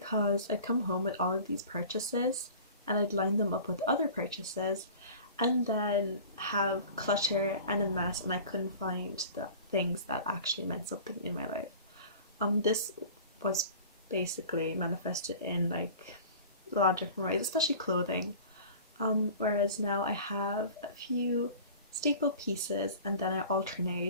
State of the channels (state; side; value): inverted; both; correlation -0.41